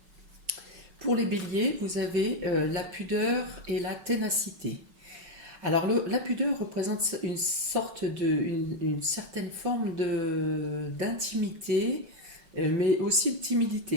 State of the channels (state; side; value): late; left; 6.0 ms